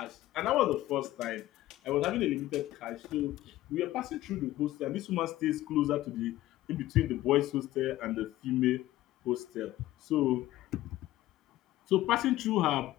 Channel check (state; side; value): quieter; right; 15.6 dB